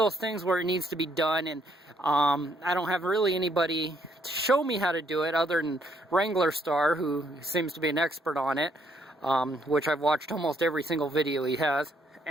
things where it needs to be done, and I don't have really anybody to show me how to do it other than Wrangler Star, who seems to be an expert on it, which I've watched almost every single video he has,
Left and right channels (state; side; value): normal; both; correlation 0.70